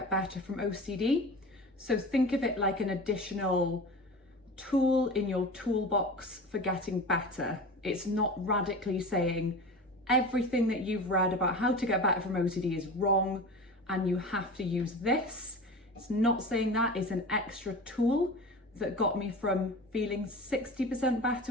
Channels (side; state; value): both; normal; correlation 0.33